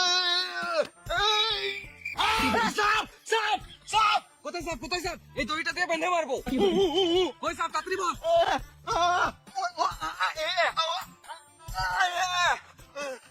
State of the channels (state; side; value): identical; both; correlation 1.00